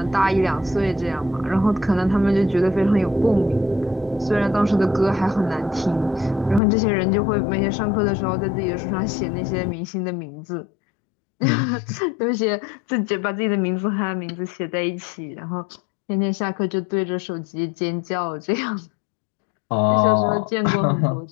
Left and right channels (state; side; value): drops out; right; at 6.6 s